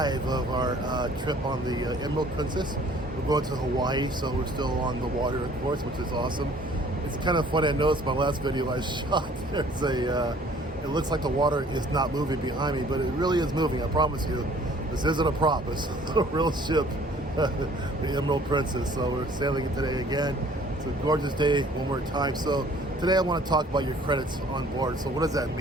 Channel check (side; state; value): both; normal; correlation 0.55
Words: of our trip on the Emerald Princess. We're going to Hawaii, so we're still on the water, of course, which is awesome. It's kind of funny, I noticed my last video I shot, there's it looks like the water is not moving behind me, but it really is moving, I promise you. This isn't a prop, it's a real ship, the Emerald Princess. So we're sailing it today again. It's a gorgeous day one more time. So today I want to talk about your credits on board. So what does that